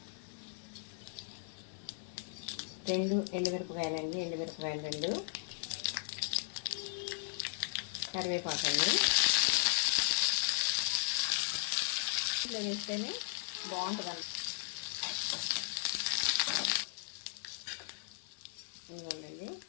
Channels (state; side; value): silent; right; digital silence